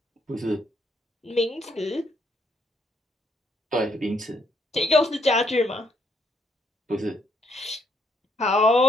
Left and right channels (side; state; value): both; normal; correlation 0.72